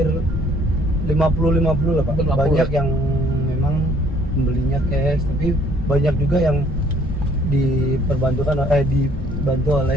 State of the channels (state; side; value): noise; left; rumble, 6 dB below the sound